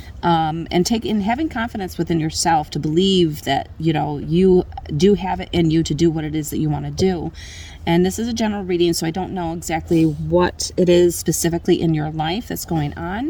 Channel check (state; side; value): identical; both; correlation 1.00